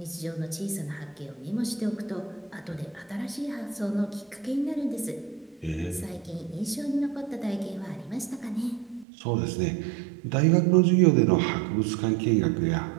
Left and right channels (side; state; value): left; drops out; at 9.1 s